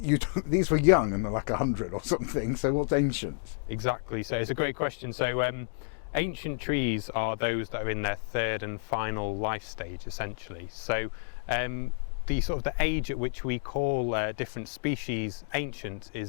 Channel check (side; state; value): right; silent; digital silence